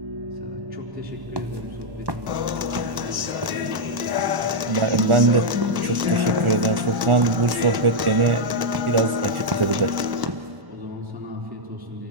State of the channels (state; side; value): late; left; 1.1 ms